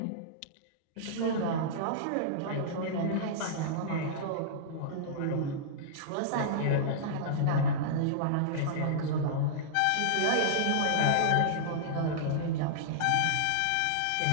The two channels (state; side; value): different; both; correlation -0.02